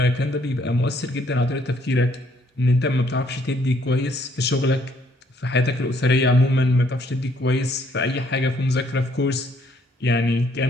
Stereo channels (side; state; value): both; normal; correlation 0.66